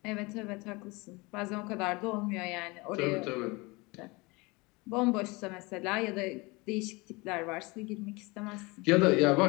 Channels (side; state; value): right; quieter; 25.3 dB